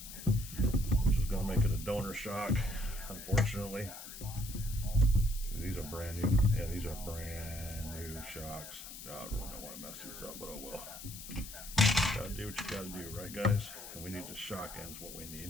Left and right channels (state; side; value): noise; left; hiss, 12 dB below the sound